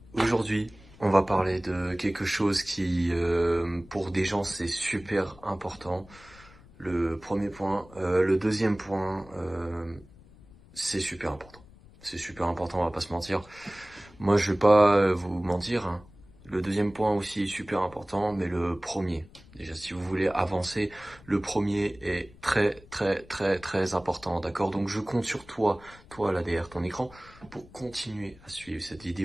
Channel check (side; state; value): left; noise; rumble, 23 dB below the sound